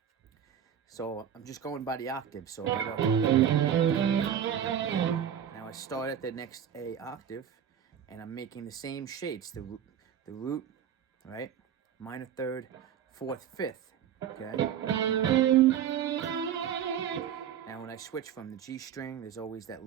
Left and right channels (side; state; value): left; quieter; 9.2 dB